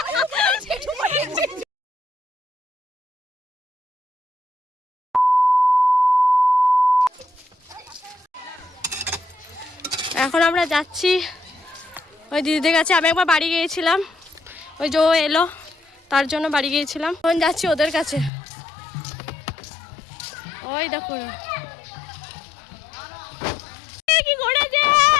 এখন আমরা যাচ্ছি ওই দিদিদের কাছে। আমি একবার বাড়ি গিয়েছিলাম, ওই যে ও এলো তার জন্য বাড়ি গিয়েছিলাম। এখন যাচ্ছি ওদের কাছে। ওই দেখো কি করেছে,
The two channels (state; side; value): drops out; right; at 18.3 s